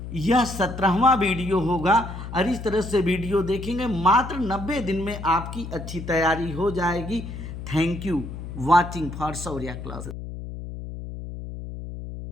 यह 17वां वीडियो होगा। और इस तरह से वीडियो देखेंगे, मात्र 90 दिन में आपकी अच्छी तैयारी हो जाएगी। Thank you watching for Shaurya classes.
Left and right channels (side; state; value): left; noise; hum, 9 dB below the sound